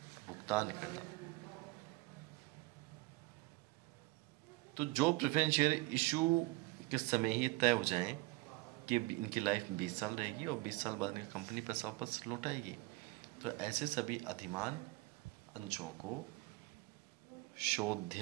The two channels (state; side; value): quieter; left; 21.6 dB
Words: भुगतान करना। तो जो प्रेफरेंस शेयर इशू के समय ही तय हो जाएं कि इनकी लाइफ 20 साल रहेगी और 20 साल बाद कंपनी पैसा वापस लौटाएगी, तो ऐसे सभी अधिमान अंशों को